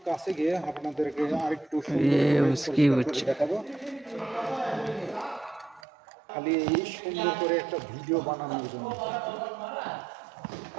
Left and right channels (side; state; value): left; drops out; at 5.8 s